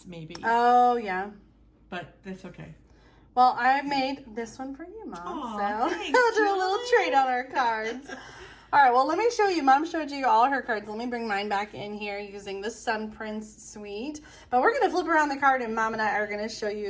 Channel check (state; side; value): identical; both; correlation 1.00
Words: maybe. Oh, yeah. But that's okay. Well, I made this one for you, Mom. Aw, so thanks, I'll do a little Julie. trade on our cards. All right, well, let me show you. Mom showed you all her cards. Let me bring mine back in here using the Sun Prince Suite. But we're going to flip around the card, and Mom and I are going to show